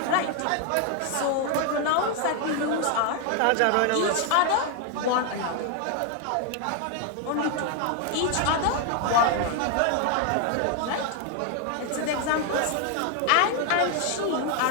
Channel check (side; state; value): both; different; correlation 0.00